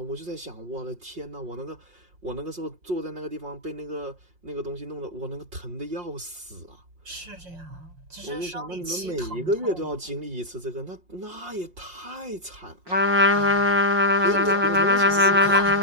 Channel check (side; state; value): left; late; 5.6 ms